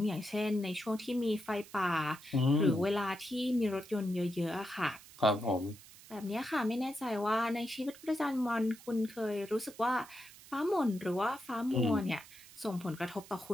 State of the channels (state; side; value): noise; right; hiss, 20 dB below the sound